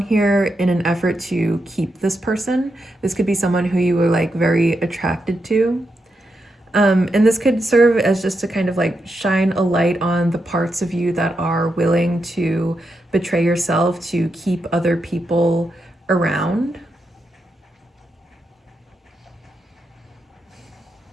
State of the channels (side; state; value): both; normal; correlation 0.85